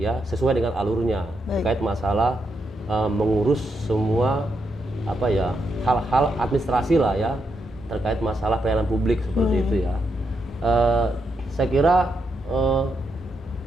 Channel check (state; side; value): normal; both; correlation 0.82